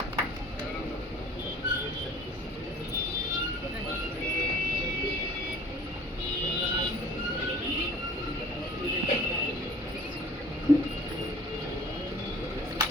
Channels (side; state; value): both; normal; correlation 0.47